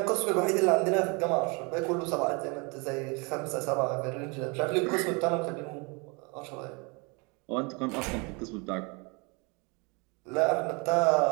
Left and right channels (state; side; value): quieter; left; 30.5 dB